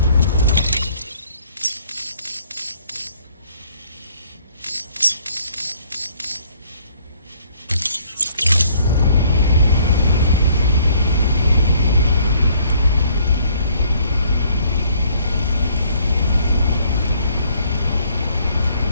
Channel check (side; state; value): both; inverted; correlation -0.62